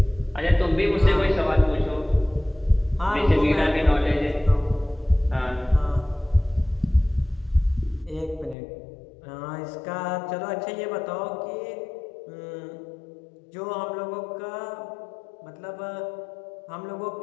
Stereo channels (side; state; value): right; drops out; at 8.6 s